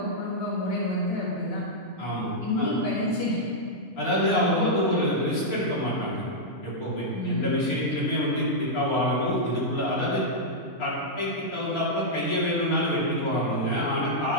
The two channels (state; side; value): normal; both; correlation -0.07